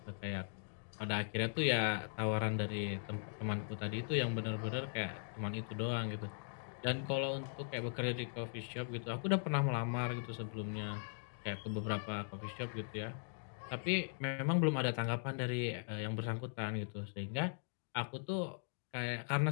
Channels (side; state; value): right; silent; digital silence